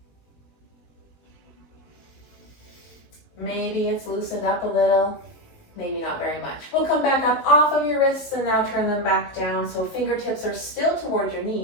Maybe it's loosened up a little, maybe not very much. We'll come back up off of your wrists and now turn them back down. So fingertips are still towards your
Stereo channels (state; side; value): late; right; 19 ms